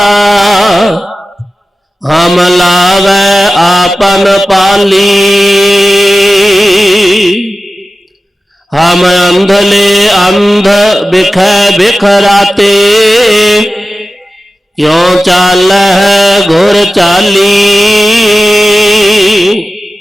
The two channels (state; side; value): normal; both; correlation 0.95